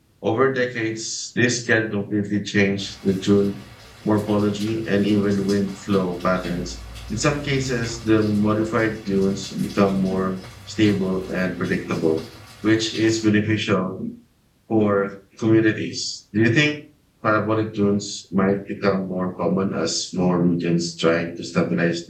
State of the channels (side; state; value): both; identical; correlation 1.00